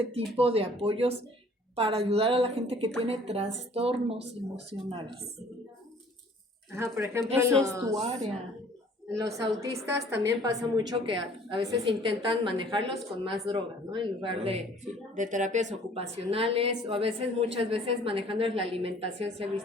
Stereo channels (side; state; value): both; normal; correlation 0.55